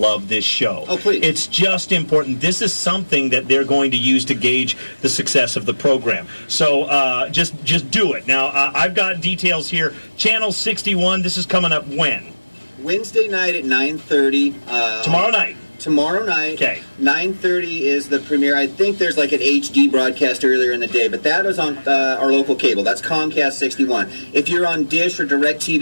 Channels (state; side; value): inverted; both; correlation -1.00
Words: this show. Oh, please. It's just important. This is something that they're going to use to gauge the success of the program. So just do it. Now, I've got details here. Channel 61, this is coming up when? Wednesday night at 9:30. Tomorrow night. Tomorrow night. Okay. 9:30 is the premiere. I think there's an HD broadcast earlier in the day, but that is on our local cable. That's Comcast 61. If you're on Dish or